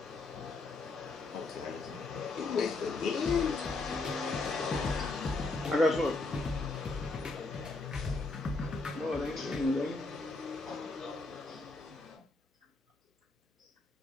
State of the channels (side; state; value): right; quieter; 3.4 dB